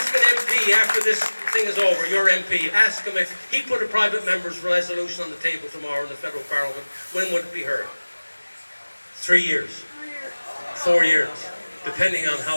an MP after this thing is over, your MP, ask him if he put a private member's resolution on the table tomorrow in the federal parliament, when would it be heard? 3 years, 4 years, depending on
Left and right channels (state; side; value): inverted; both; correlation -1.00